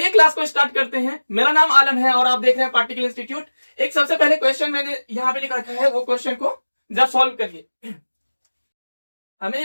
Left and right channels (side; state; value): both; inverted; correlation -1.00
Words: क्लास को स्टार्ट करते हैं। मेरा नाम आलम है और आप देख रहे हैं पार्टिकल इंस्टीट्यूट। एक सबसे पहले क्वेश्चन मैंने यहाँ पे लिख रखा है, वो क्वेश्चन को जरा सॉल्व करिए। हमें